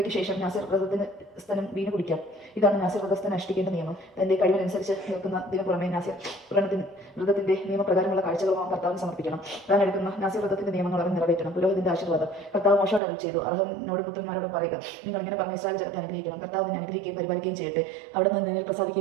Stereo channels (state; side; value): drops out; left; at 13.0 s